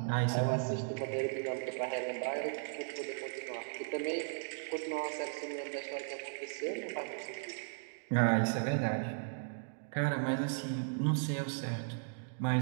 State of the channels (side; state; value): left; silent; digital silence